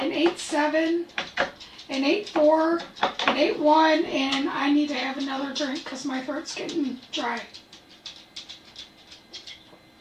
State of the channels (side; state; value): both; identical; correlation 1.00